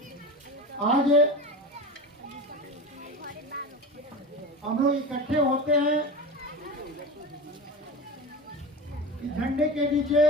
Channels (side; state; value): both; normal; correlation 0.28